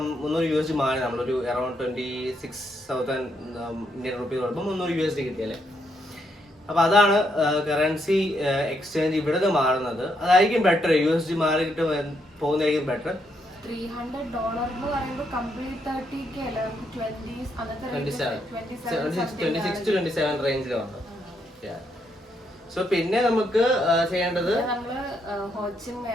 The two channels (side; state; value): both; normal; correlation 0.77